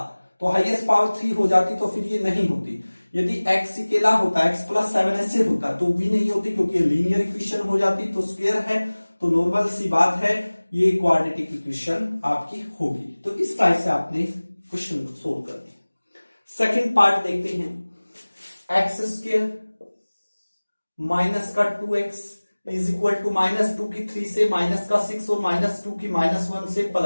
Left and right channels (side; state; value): both; inverted; correlation -1.00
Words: तो हाईएस्ट पावर 3 हो जाती, तो फिर ये नहीं होती। यदि x अकेला होता, x + 7 ऐसे होता तो भी नहीं होती, क्योंकि लीनियर इक्वेशन हो जाती। तो स्क्वायर है तो नॉर्मल सी बात है, ये क्वाड्रेटिक इक्वेशन आपकी होगी। तो इस टाइप से आपने क्वेश्चन को सोल्व करना है। सेकंड पार्ट देखते हैं, x² माइनस का 2x इज इक्वल टू -2 की 3 से माइनस का 6 और -2 की -1 से